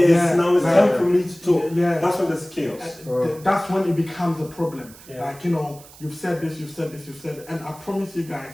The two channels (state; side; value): noise; right; hiss, 21 dB below the sound